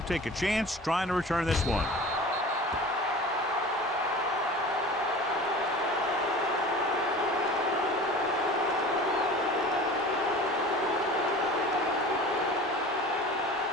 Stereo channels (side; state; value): both; normal; correlation 0.39